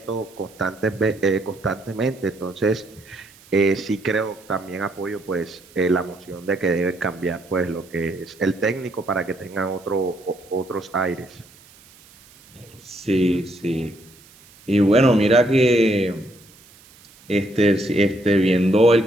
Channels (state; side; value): noise; right; hiss, 25 dB below the sound